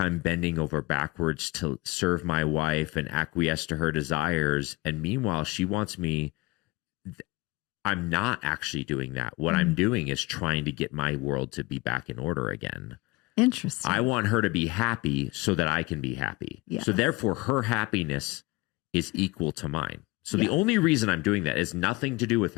bending over backwards to serve my wife and acquiesce to her desires. And meanwhile, she wants me. I'm not actually doing that. What I'm doing is trying to get my world to be back in order again. Interesting. I want her to be happy so that I can be happy. Yeah. So therefore, her happiness is equal to mine. So the only reason I'm doing that is nothing to do with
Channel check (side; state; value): right; quieter; 22.7 dB